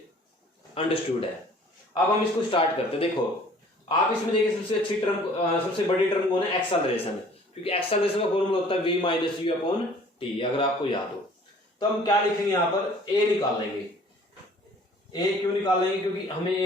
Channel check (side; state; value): both; normal; correlation 0.53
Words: अंडरस्टूड है। अब हम इसको स्टार्ट करते हैं। देखो आप इसमें देखिए सबसे अच्छी टर्म, सबसे बड़ी टर्म कौन है, एक्सेलरेशन, क्योंकि एक्सेलरेशन का फॉर्मूला होता है v minus you upon T, अगर आपको याद हो। तो हम क्या लिखेंगे यहाँ पर, a निकाल लेंगे। a क्यों निकाल लेंगे, क्योंकि हमें